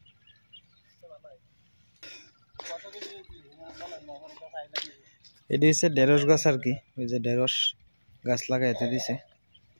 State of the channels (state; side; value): inverted; both; correlation -1.00